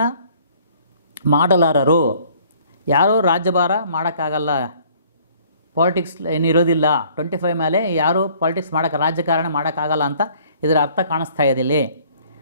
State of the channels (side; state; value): both; inverted; correlation -0.57